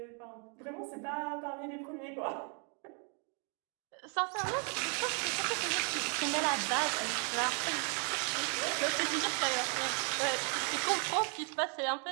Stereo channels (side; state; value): left; quieter; 38.9 dB